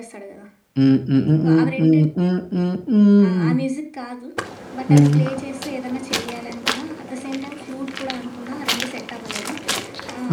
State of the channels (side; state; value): both; identical; correlation 1.00